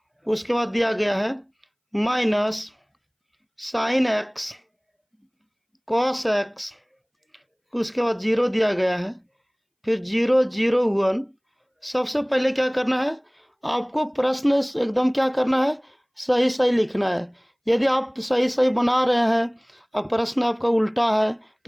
उसके बाद दिया गया है minus sine X cos x, उसके बाद 0 दिया गया है, फिर 0 0 1। सबसे पहले क्या करना है, आपको प्रश्न एकदम क्या करना है, सही सही लिखना है। यदि आप सही सही बना रहे हैं और प्रश्न आपका उल्टा है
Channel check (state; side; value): identical; both; correlation 1.00